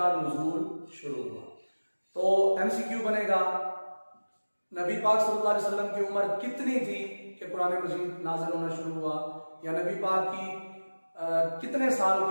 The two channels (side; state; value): both; inverted; correlation -1.00